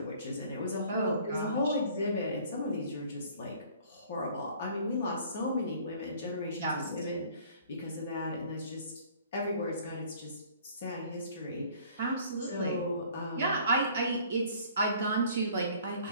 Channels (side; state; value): both; inverted; correlation -0.53